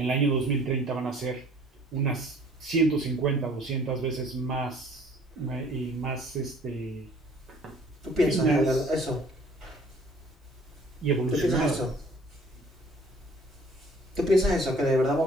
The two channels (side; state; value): both; normal; correlation 0.55